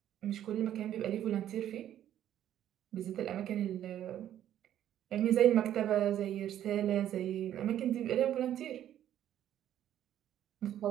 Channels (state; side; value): quieter; left; 11.3 dB